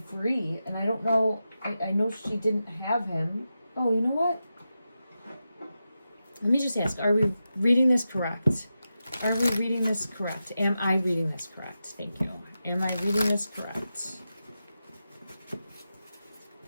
and I don't know. I know she didn't have him. Oh, you know what? Let me just ask, are we reading this correct? Are we reading this correct? Am I reading this correct? Thank you. Am I reading this correct?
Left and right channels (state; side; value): inverted; both; correlation -0.91